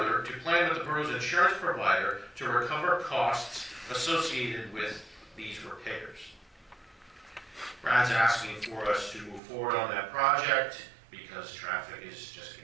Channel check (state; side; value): drops out; left; at 9.4 s